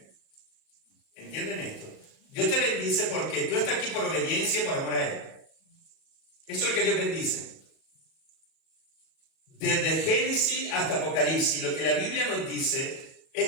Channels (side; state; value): right; late; 37 ms